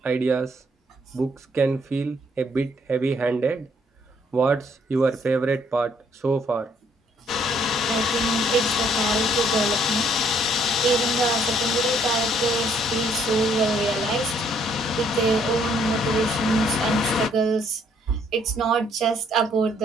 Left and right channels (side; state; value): both; normal; correlation 0.66